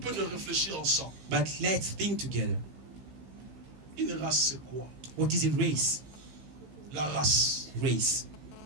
de réfléchir ensemble. But let's think together. Une race, c'est quoi? What is a race? La race. Race.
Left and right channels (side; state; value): left; late; 15 ms